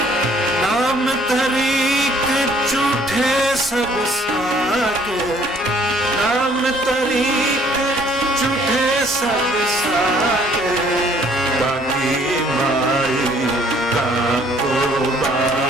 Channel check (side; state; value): both; normal; correlation 0.60